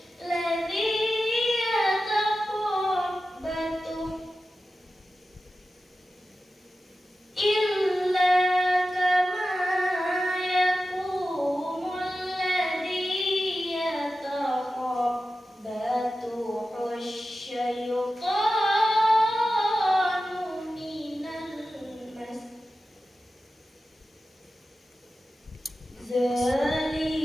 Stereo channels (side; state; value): both; normal; correlation 0.93